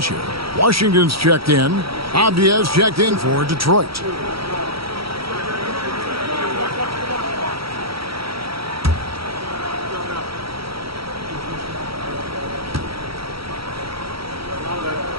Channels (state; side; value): late; left; 0.75 ms